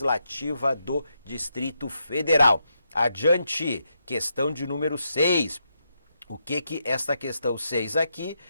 do Distrito Federal. Adiante, questão de número 6. O que esta questão 6 aqui,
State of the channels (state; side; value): inverted; both; correlation -0.82